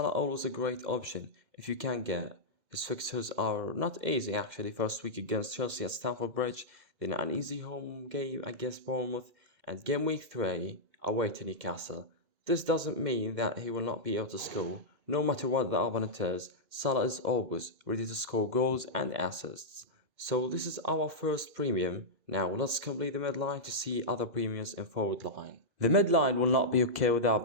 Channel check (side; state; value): left; late; 2.0 ms